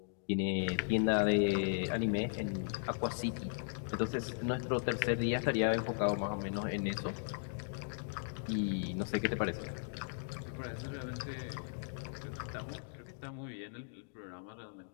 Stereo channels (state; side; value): silent; right; digital silence